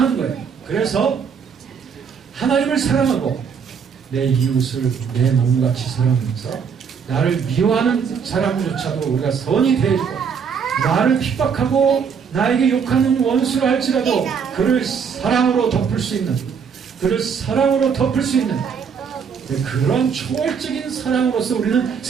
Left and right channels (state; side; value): quieter; left; 6.5 dB